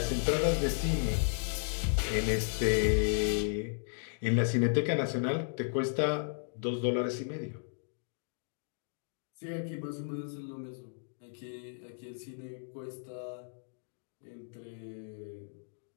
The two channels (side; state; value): right; silent; digital silence